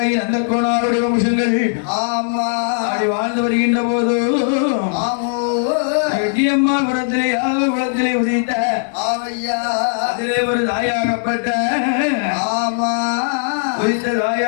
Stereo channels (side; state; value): right; silent; digital silence